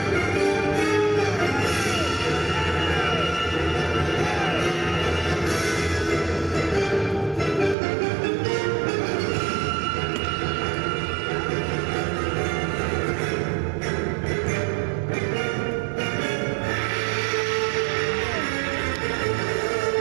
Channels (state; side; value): drops out; left; at 7.8 s